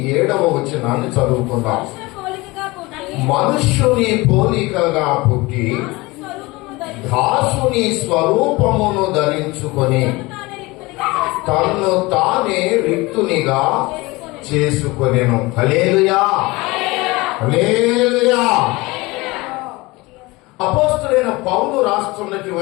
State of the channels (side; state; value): right; quieter; 22.5 dB